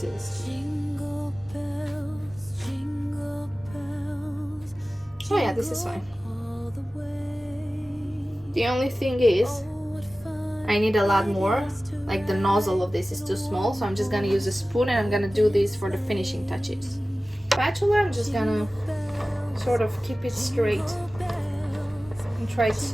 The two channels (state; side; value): normal; both; correlation 0.96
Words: is. Jingle bells, Oh yeah, this is fine. The only thing is I need a lot more. Like the nozzle of this is too small, so I'm just gonna use a spoon and I'm gonna do this for the finishing touches. Spatula, I'm just gonna sort of keep it straight and try